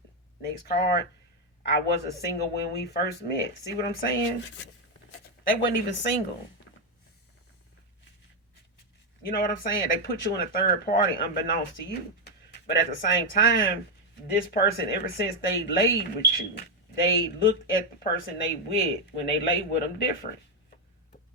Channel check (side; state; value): both; normal; correlation 0.04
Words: next card, I wasn't single when we first met. See what I'm saying? They wasn't even single. You know what I'm saying? They put you in a third party unbeknownst to you. But at the same time, this person, ever since they laid with you, they looked at the person they with when they laid with them different.